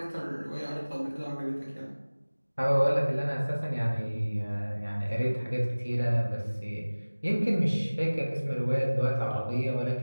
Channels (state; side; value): inverted; both; correlation -1.00